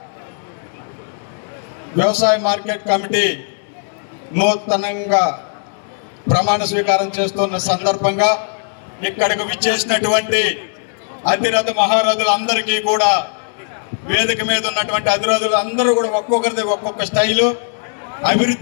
వ్యవసాయ మార్కెట్ కమిటీ నూతనంగా ప్రమాణ స్వీకారం చేస్తున్న సందర్భంగా ఇక్కడికి విచ్చేసినటువంటి అతిరథ మహారథులందరికీ కూడా, వేదిక మీద ఉన్నటువంటి అతిరథులు అందరూ కూడా ఒక్కొక్కరిది ఒక్కొక్క స్టైలు,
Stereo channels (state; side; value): silent; right; 67 dB below the other